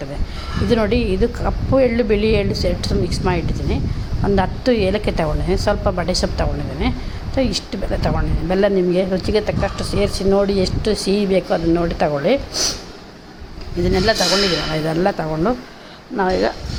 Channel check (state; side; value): identical; both; correlation 1.00